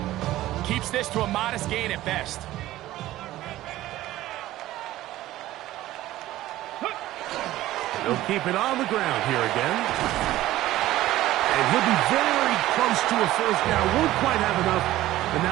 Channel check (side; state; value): left; quieter; 15.4 dB